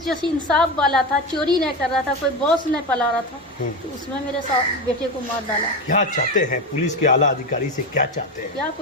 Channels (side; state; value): both; normal; correlation 0.20